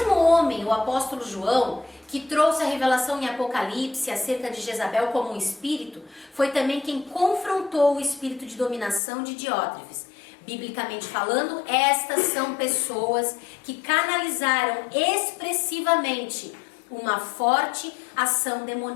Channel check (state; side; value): drops out; right; at 9.0 s